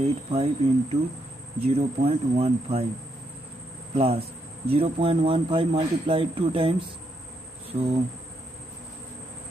into 0.15 plus 0.15 multiplied 2 times, so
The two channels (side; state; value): both; normal; correlation 0.78